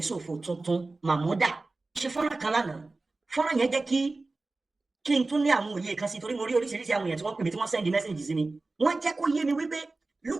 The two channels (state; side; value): quieter; left; 3.4 dB